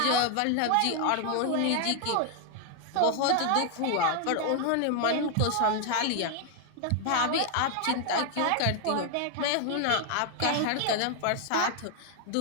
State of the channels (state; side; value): different; both; correlation 0.00